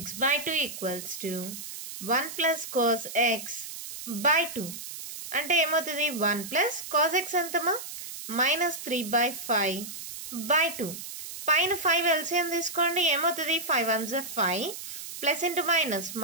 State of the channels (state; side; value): noise; right; hiss, 10 dB below the sound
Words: by 2 equals to 1 plus cos x by 2 అంటే ఏమవుతుంది 1 ప్లస్ కాస్ ఎక్స్ ఎంతమా -3/5 బై 2 పైన 5 ఎల్సిఎం తీసుకోండి ఏమవుతుంది 5 1 5 plus into minus